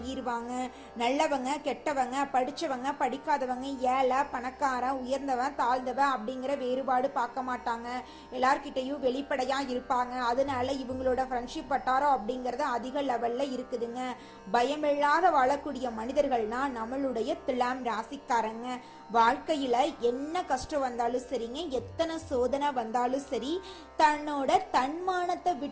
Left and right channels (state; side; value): identical; both; correlation 1.00